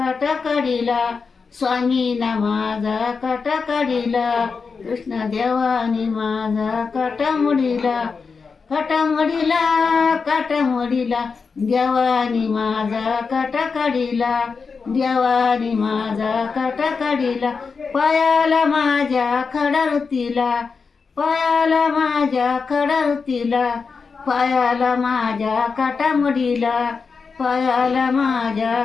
काढिला, स्वामीना माझा काटा काढिला, कृष्ण देवानी माझा काटा मडीला, काटा मडीला, काटा मडीला, देवानी माझा काटा काढिला, देवानी माझा काटा काढिला, पायाला माझ्या खडा रुतीला, पायाला माझ्या खडा रुतीला, पायाला माझ्या काटा मडीला, पायाला माझ्या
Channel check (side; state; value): right; quieter; 5.1 dB